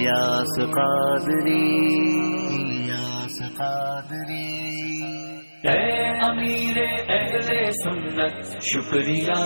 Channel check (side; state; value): both; inverted; correlation -1.00